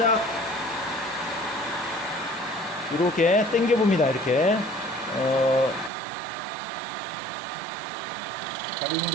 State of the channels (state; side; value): drops out; left; at 5.9 s